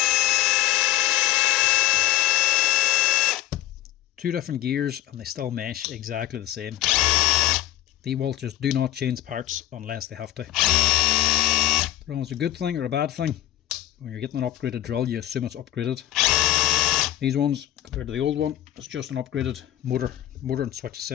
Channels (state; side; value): quieter; right; 13.8 dB